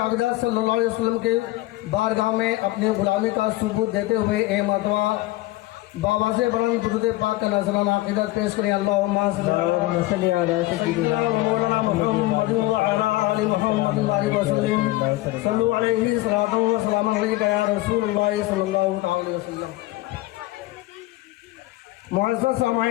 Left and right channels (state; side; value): quieter; right; 17.8 dB